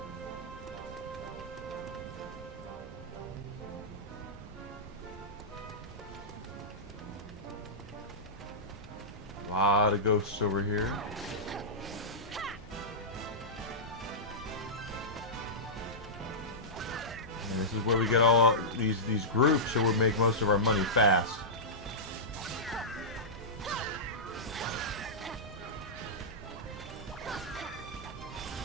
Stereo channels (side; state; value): both; normal; correlation -0.13